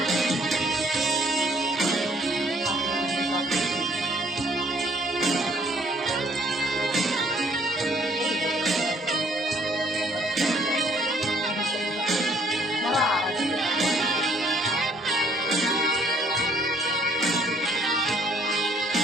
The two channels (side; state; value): both; normal; correlation 0.62